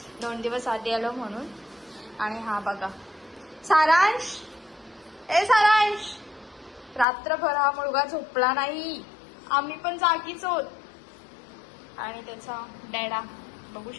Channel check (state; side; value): drops out; right; at 7.1 s